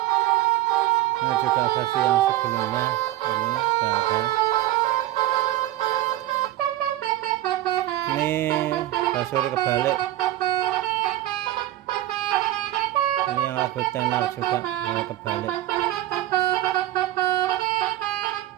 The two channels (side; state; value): left; quieter; 14.8 dB